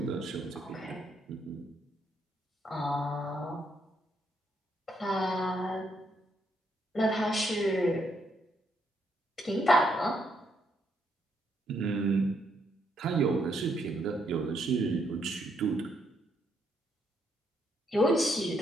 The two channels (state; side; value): normal; both; correlation 0.75